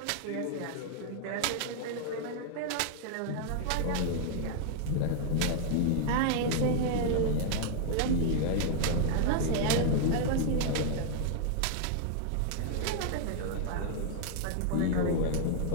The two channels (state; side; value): different; both; correlation -0.01